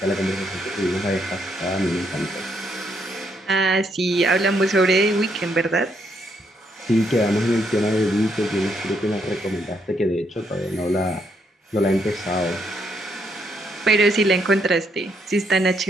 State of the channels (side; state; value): both; normal; correlation 0.75